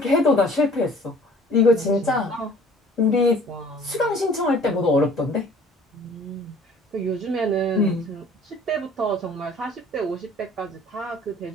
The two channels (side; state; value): both; normal; correlation 0.52